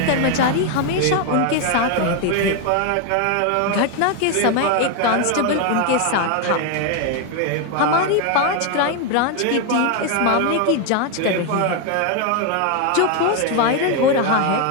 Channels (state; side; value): different; both; correlation 0.01